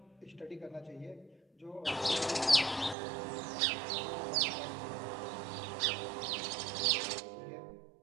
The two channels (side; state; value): left; drops out; at 3.0 s